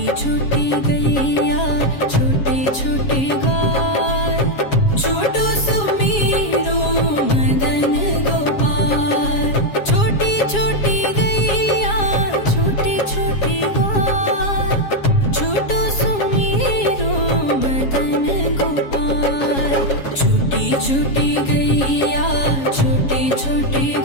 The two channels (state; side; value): late; right; 7.3 ms